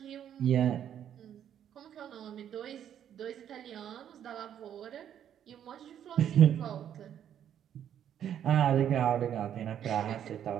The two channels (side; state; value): left; quieter; 9.8 dB